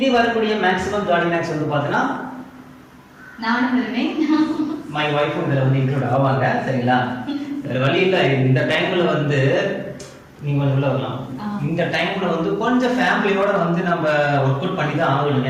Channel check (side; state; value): both; identical; correlation 1.00